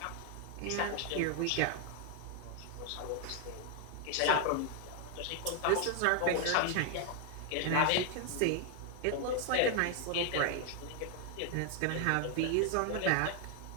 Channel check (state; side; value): different; both; correlation 0.00